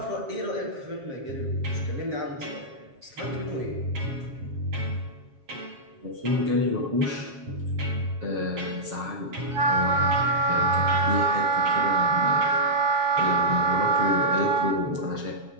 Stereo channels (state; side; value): late; left; 7.4 ms